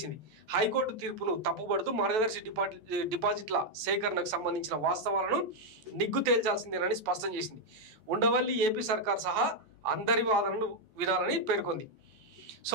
హైకోర్టు తీర్పును తప్పుపడుతూ మార్గదర్శి డిపాజిట్ల సేకరణకు సంబంధించిన వాస్తవాలను నిగ్గు తేల్చాల్సిందేనని స్పష్టం చేసింది. ఉండవల్లి ఏపీ సర్కార్ సహా అందరి వాదనలు వినాలని పేర్కొంది.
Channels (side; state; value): left; late; 14 ms